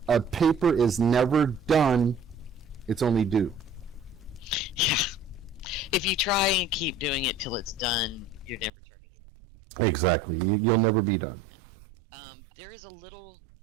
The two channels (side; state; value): left; drops out; at 8.7 s